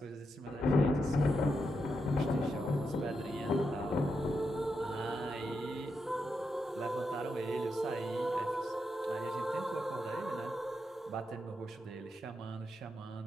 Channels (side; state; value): both; normal; correlation 0.84